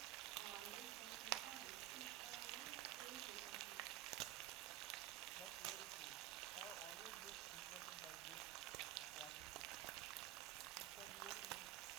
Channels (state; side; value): quieter; left; 13.8 dB